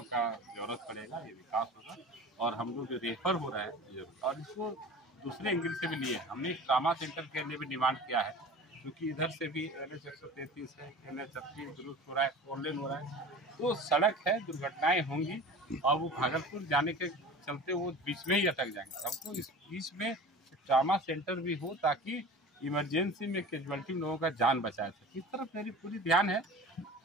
का जरूरत पड़ेगा, ये विकास होगा। और हम लोग जो रेफर हो रहा है और इसको दूसरे एंगल से भी लिए, हमने ट्रामा सेंटर के लिए भी डिमांड किया है, क्योंकि इधर से भी NH 133 है, NH 38 दुरुस्त हो रहा है, 4 लेन हो रहा है, तो सड़क है, दुर्घटनाएं होंगी और वो भागलपुर जाने के चलते वो बीच में ही अटक जाएंगे। हमको इस बीच में ट्रामा सेंटर भी हो ताकि इमरजेंसी में कैजुअल्टी लोगों का जान बचाया सके। इस तरफ मेरी पूरी ध्यान है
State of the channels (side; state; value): both; normal; correlation 0.38